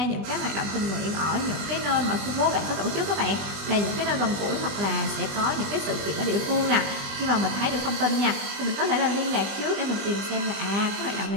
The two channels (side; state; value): left; late; 20 ms